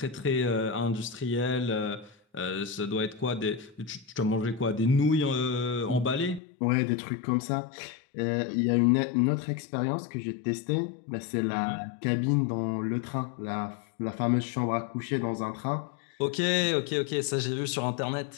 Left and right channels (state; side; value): drops out; right; at 6.4 s